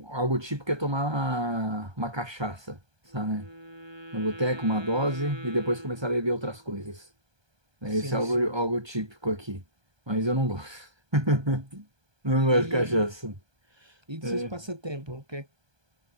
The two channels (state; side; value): late; left; 1.2 ms